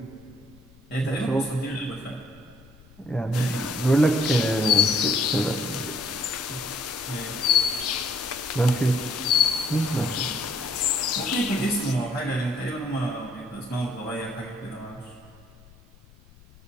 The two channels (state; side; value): noise; left; rumble, 25 dB below the sound